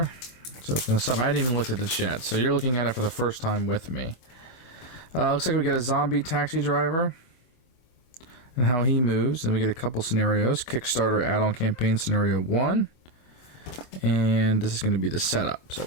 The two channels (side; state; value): right; late; 25 ms